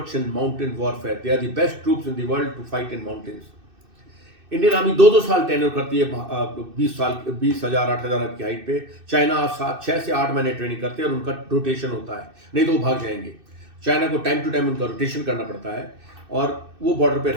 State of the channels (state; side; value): late; left; 2.6 ms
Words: in mountain warfare, they are the best troops in the world to fight in mountains. Indian army 2-2 साल tenure करती है, 20,000 8,000 की height पे। China 6 से 8 महीने ट्रेनिंग करते हैं और उनका रोटेशन होता है, नहीं तो वो भाग जाएंगे। चाइना को टाइम टू टाइम उनका रोटेशन करना पड़ता है और वो बॉर्डर पे